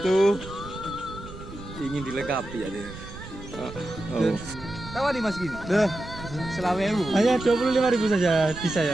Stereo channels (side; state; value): right; noise; rumble, 14 dB below the sound